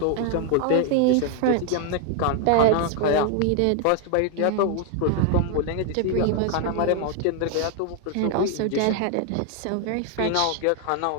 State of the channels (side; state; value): both; different; correlation 0.00